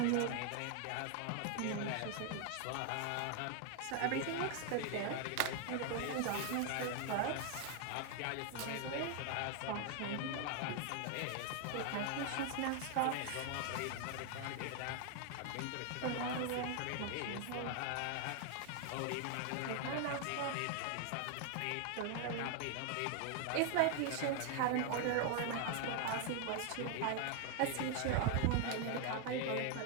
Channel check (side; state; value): both; different; correlation 0.00